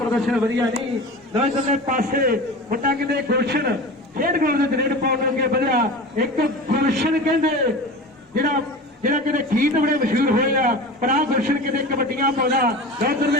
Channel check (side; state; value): both; normal; correlation 0.32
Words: ਵਧੀਆ ਨਹੀਂ। ਲੋ ਇਧਰਲੇ ਪਾਸੇ ਮੁੰਡਾ ਕਹਿੰਦੇ ਗੁਲਸ਼ਨ ਖੇਡ ਗਰਾਊਂਡ ਦੇ ਰੇਡ ਪਾਉਣ ਅੱਗੇ ਵਧਿਆ। ਇੱਕ ਗੁਲਸ਼ਨ ਕਹਿੰਦੇ ਜਿਹੜਾ ਕਹਿੰਦੇ ਗੀਤ ਬੜੇ ਮਸ਼ਹੂਰ ਹੋਏ ਆ, ਪਰ ਆਹ ਗੁਲਸ਼ਨ ਕਹਿੰਦੇ ਕਬੱਡੀਆਂ ਪਾਉਂਦਾ। ਉਧਰਲੇ